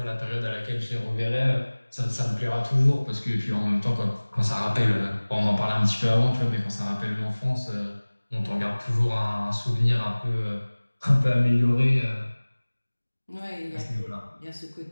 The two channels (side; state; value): both; inverted; correlation -1.00